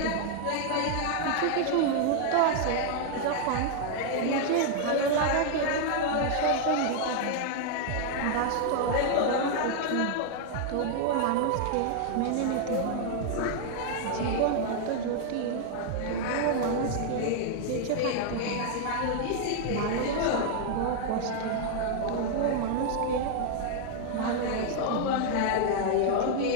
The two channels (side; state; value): both; different; correlation 0.00